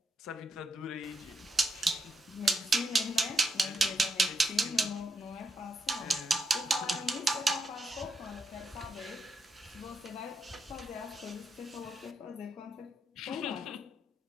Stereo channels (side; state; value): both; normal; correlation 0.82